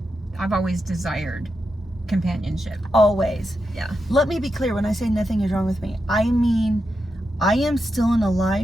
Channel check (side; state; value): both; normal; correlation 0.87